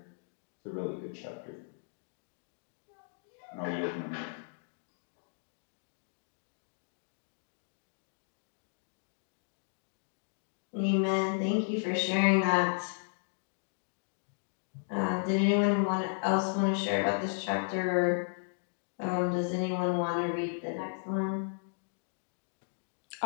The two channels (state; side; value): silent; right; digital silence